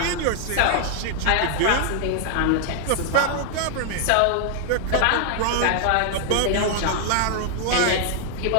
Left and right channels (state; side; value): different; both; correlation 0.00